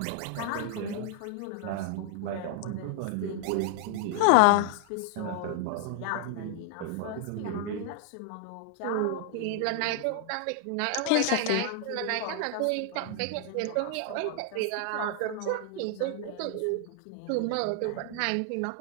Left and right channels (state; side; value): different; both; correlation 0.00